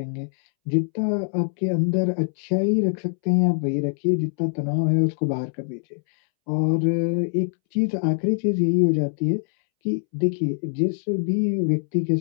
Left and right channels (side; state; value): right; silent; 63 dB below the other